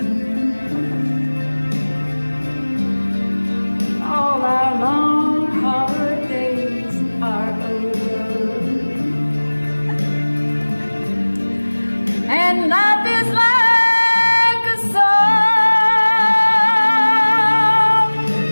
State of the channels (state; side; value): inverted; both; correlation -1.00